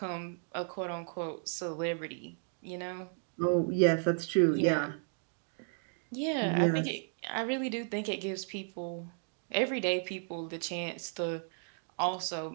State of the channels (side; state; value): left; silent; 55 dB below the other